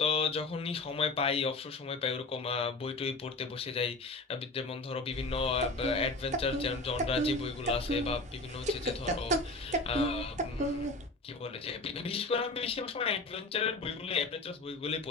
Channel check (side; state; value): right; quieter; 3.1 dB